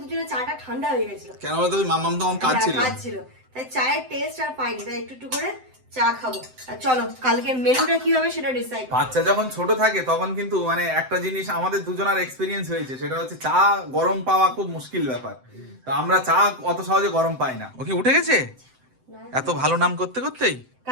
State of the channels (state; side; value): late; left; 7.8 ms